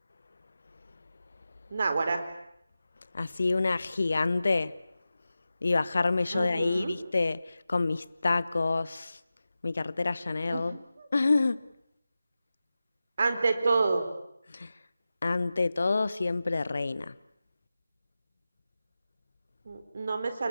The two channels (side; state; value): both; inverted; correlation -0.94